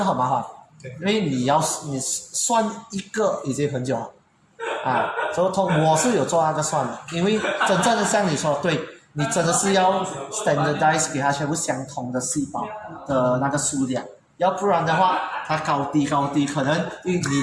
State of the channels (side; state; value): both; identical; correlation 1.00